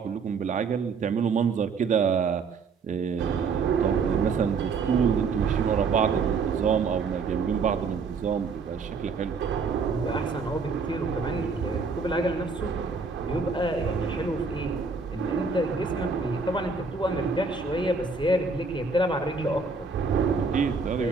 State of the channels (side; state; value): left; quieter; 4.8 dB